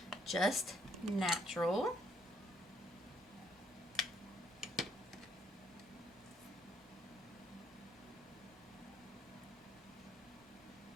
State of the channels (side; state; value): both; normal; correlation 0.69